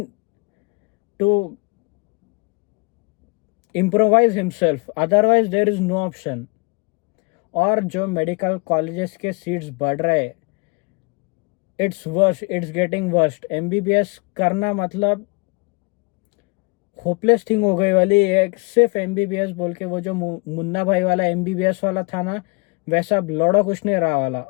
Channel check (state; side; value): quieter; right; 30.2 dB